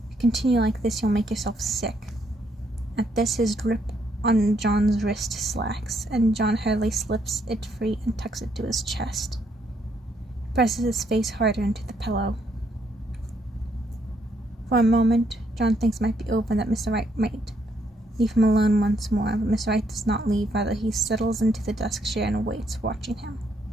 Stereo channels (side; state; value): both; normal; correlation 0.73